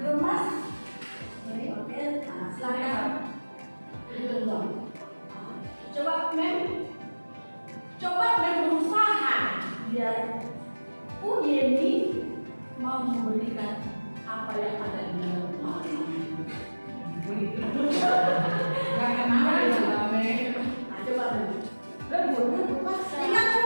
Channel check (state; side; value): inverted; both; correlation -1.00